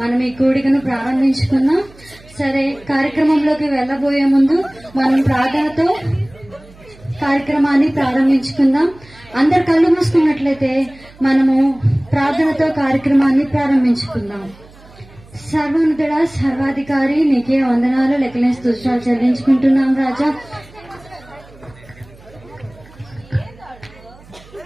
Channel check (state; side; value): noise; right; hum, 24 dB below the sound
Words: మనం ఈ కూడికను ప్రారంభించుకున్నాం. సరే, కార్యక్రమంలోకి వెళ్లబోయే ముందు మనం ప్రార్థనతో కార్యక్రమాన్ని ప్రారంభించుకుందాం. అందరు కళ్ళు మూసుకున్నట్లయితే మనము ప్రార్థనతో కార్యక్రమాన్ని ప్రారంభించుకుందాం. సర్వోన్నతుడా, సర్వాధికారి, నీకే వందనాలు, లెక్కలేని స్తుతులు చెల్లించుకుంటున్నాం రాజా.